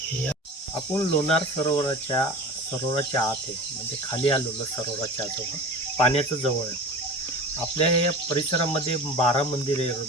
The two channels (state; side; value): normal; both; correlation 0.35